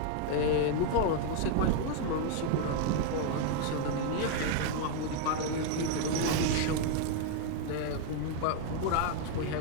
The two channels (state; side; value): different; both; correlation 0.00